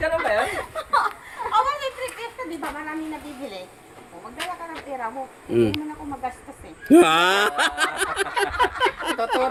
ba yun? Oh, may trip ito, di ba? Marami nabibili. O, magdala ka ng pera mo. Mm. Hindi mo na ako magastos eh. Ah,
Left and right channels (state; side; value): identical; both; correlation 1.00